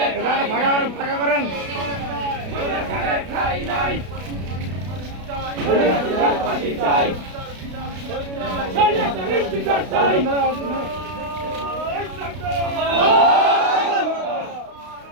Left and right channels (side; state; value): left; late; 32 ms